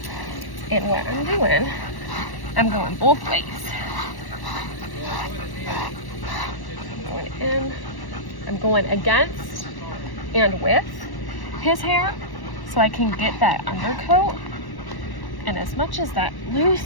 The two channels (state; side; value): late; right; 1.1 ms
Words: And what I'm doing, I'm going both ways. I'm going in, I'm going against and with his hair so I can get that undercoat and as much as that